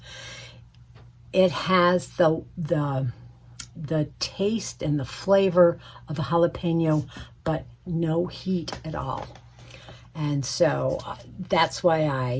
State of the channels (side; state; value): both; identical; correlation 1.00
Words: It has the taste and the flavor of a jalapeno, but no heat at all. And so that's why